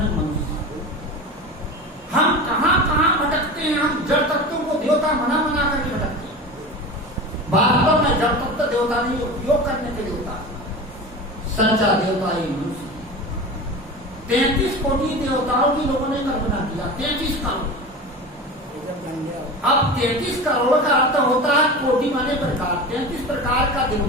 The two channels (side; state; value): both; normal; correlation 0.30